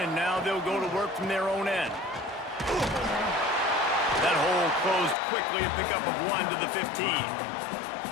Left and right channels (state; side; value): drops out; right; at 5.2 s